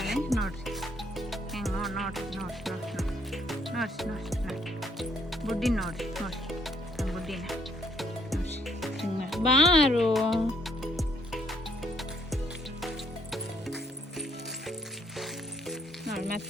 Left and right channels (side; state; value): both; normal; correlation 0.69